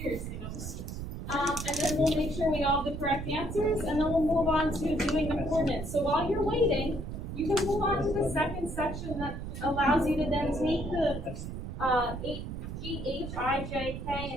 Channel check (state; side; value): noise; right; rumble, 7 dB below the sound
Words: Seriously, no pressure. And then we'll make sure we all have the correct answers, and then we'll move on to doing the coordinates. So while you're waiting, you can move on to the second section that allows you to then take the, G, H, I, J,